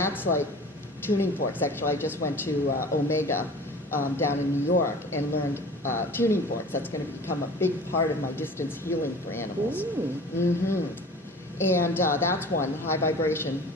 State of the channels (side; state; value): both; normal; correlation 0.41